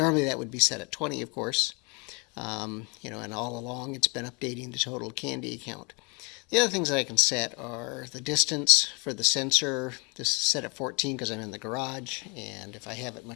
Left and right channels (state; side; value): quieter; right; 31.0 dB